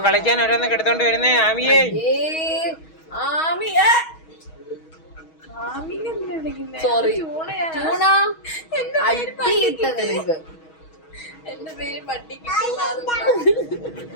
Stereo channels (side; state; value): right; late; 6.3 ms